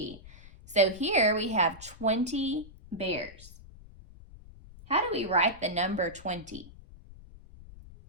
So here we have 20 bears. How do we write the number 20?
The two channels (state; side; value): noise; left; rumble, 19 dB below the sound